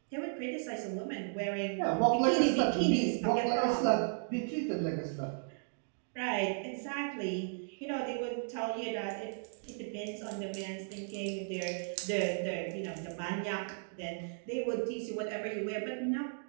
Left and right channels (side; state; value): left; silent; digital silence